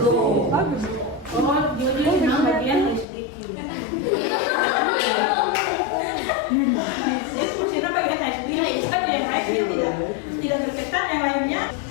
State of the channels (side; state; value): right; drops out; at 3.1 s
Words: bagus. Oh, dia memang bagian HDQ. Itu kita bagian HDQ. Saja yang lain tidak berkesan, yang lainnya.